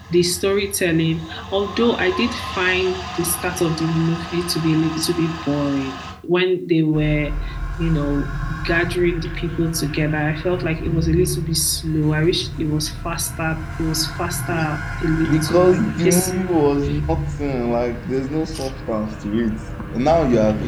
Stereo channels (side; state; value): both; identical; correlation 1.00